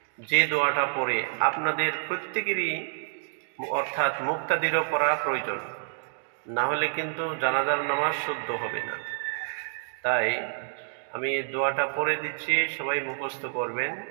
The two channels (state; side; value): silent; left; digital silence